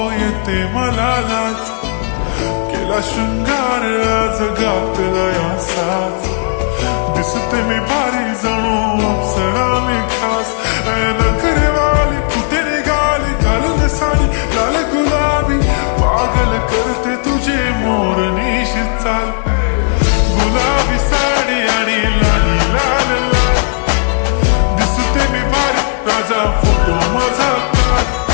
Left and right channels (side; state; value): right; silent; 60 dB below the other